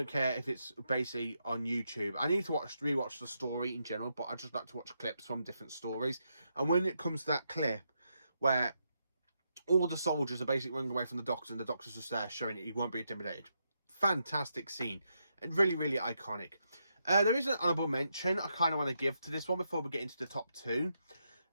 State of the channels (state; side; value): inverted; both; correlation -0.82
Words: care if it's basically on YouTube. I need to rewatch the story in general, but I just like to watch clips from different stories. And when it comes to that clip where all the soldiers are basically running away from the Doctor and the Doctor's just there showing it he won't be intimidated. Fantastic scene. And really, really iconic. There is an honourable mention I kind of want to give to this one before we get into the top 2.